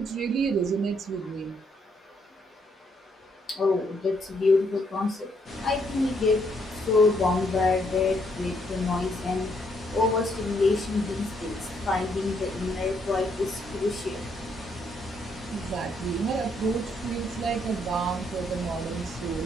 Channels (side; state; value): both; normal; correlation 0.73